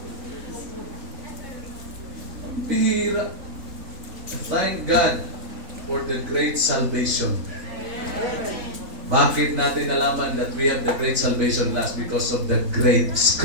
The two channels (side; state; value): left; late; 3.5 ms